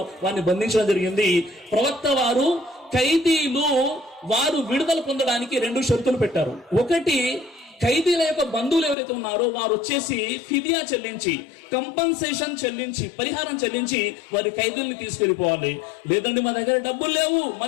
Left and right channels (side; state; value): right; drops out; at 9.0 s